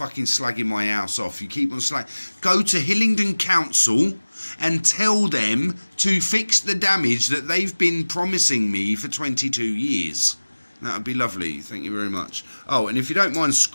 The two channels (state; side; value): inverted; both; correlation -1.00